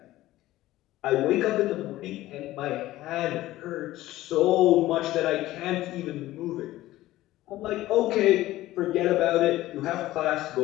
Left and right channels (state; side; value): quieter; right; 16.0 dB